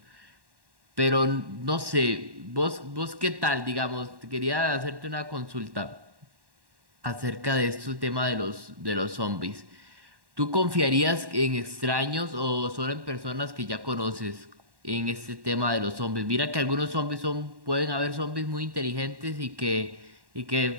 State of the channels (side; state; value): left; late; 1.1 ms